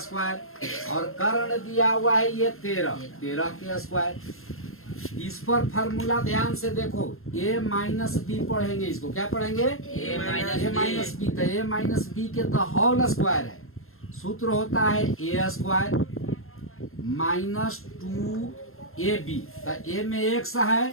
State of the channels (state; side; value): late; right; 0.61 ms